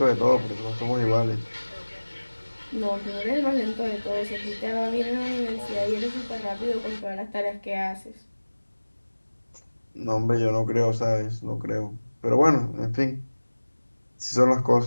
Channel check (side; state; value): both; inverted; correlation -1.00